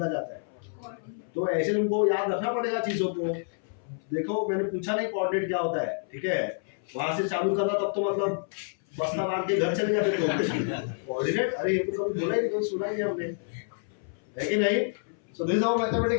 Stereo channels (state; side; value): silent; right; 59 dB below the other